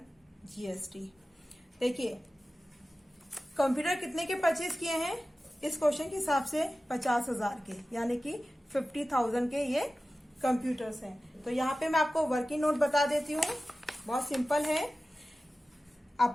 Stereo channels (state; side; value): normal; both; correlation 0.95